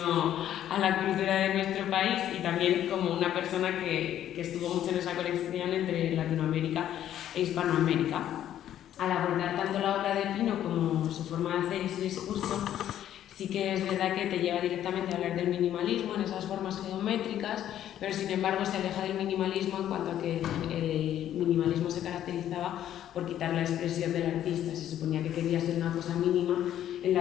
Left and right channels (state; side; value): quieter; right; 11.3 dB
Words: a la cultura de nuestro país y también como una persona que estuvo mucho en esa colección entre Latinoamérica e Hispanoamérica. Al abordar tanto la obra de Pino como su forma de hacer y su discurso, sí que es verdad que te lleva directamente a hablar del minimalismo en esas formas geométricas, pero sin embargo se aleja del minimalismo en cuanto a que el minimalismo se caracterizaba por quitar la expresión del artista. Se suponía que quería ser una cosa mínima en